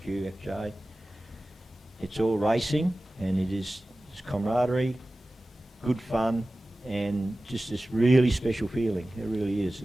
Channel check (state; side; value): normal; both; correlation 0.96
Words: FJ, it's all racing, and it's camaraderie, good fun, and just this really special feeling. It really is.